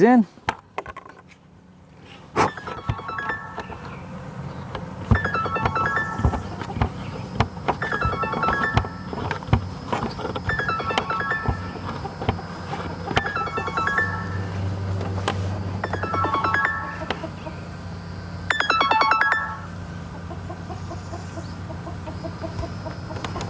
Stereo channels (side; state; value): both; identical; correlation 1.00